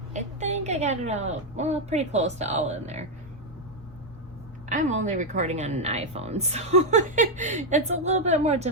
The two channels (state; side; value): normal; both; correlation 0.02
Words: I think I got it all, well, pretty close to all in there. I'm only recording on an iPhone, so it's a little bit more